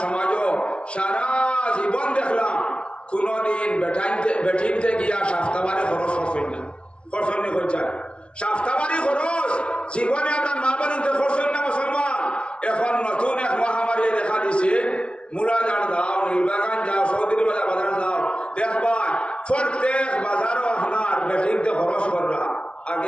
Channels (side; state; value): right; late; 0.059 ms